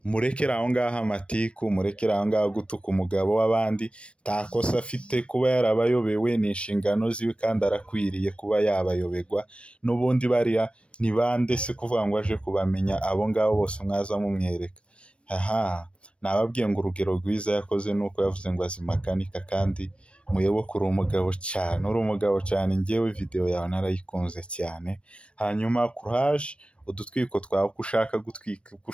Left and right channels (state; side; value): late; right; 0.059 ms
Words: Murekera aho ngaho amatiku, murekera aho ngaho gutuka umugabo w'abandi, takosa afite kuba yarabayobewe ni inshingano ziwe kandi arakwiriye kuba yabayobegwa. N'ubundi bariya ni bande se kuvuga ngo aje kubamenya abo ngabo bose mwaza mumwereka? Nababwiye ngo urugero rwiza yakoze nuko yavuze ngo azimakanika, kandi muyoboke uri umugabo cyane, njyewe video yawe narayikunze cyane. Hanyuma courage, udutwiko twawe uko ushaka gutwika, uko